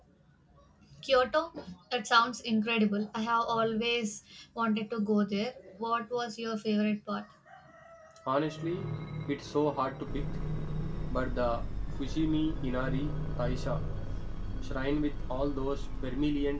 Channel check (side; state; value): both; identical; correlation 1.00